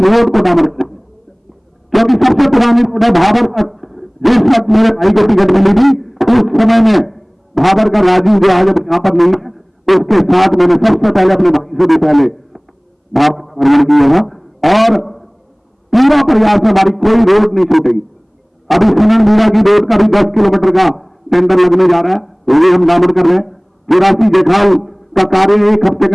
रोड को डामर करेंगे, क्योंकि सबसे पुरानी रोड है भाबर तक। जिस वक्त मेरे भाई को टिकट मिली थी उस समय में भाबर का राजू जो आज यहां पर नहीं है, उसके साथ मैंने सबसे पहले अपने भाई से भी पहले भाबर का भ्रमण किया था और पूरा प्रयास है हमारी कोई रोड नहीं छूटेगी। अभी सुनन मीरा की रोड का भी 10 किलोमीटर का टेंडर लगने जा रहा है, वो भी हम डामर कर रहे हैं। तिरासी जेखाल का कार्य 1 हफ्ते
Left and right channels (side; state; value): both; identical; correlation 1.00